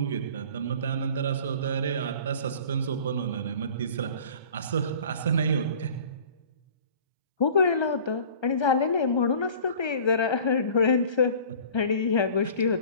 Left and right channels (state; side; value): inverted; both; correlation -0.46